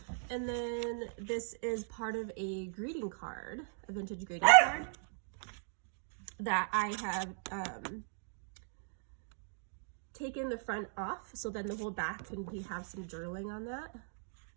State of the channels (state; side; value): silent; left; digital silence